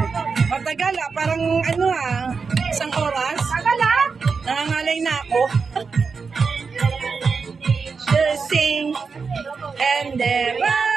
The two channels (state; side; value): quieter; left; 5.1 dB